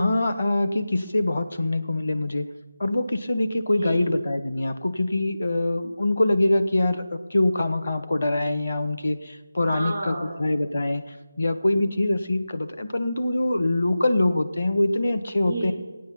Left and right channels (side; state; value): both; inverted; correlation -0.95